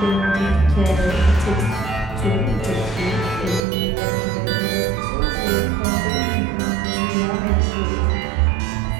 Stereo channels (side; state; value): left; drops out; at 3.6 s